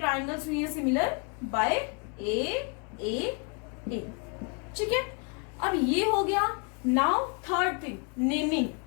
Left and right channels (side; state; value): right; quieter; 36.1 dB